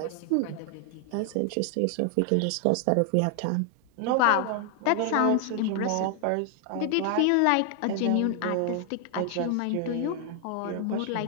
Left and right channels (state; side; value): different; both; correlation 0.00